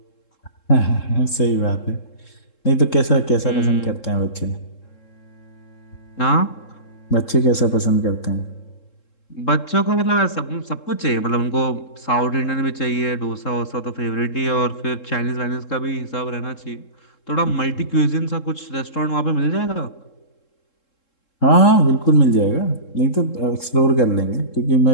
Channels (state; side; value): late; right; 3.7 ms